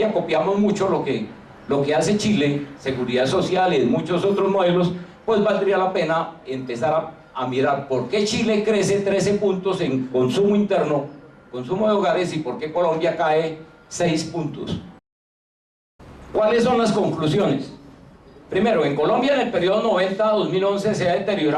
copiamos mucho lo que hace Chile, seguridad social y muchos otros modelos, pues valdría la pena empezar a mirar por qué Chile crece 13 puntos en consumo interno, consumo de hogares, y por qué Colombia cae 6 puntos. ¿Cuáles son las conclusiones? Primero, en Colombia en el periodo 90-2011 se ha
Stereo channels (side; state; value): both; identical; correlation 1.00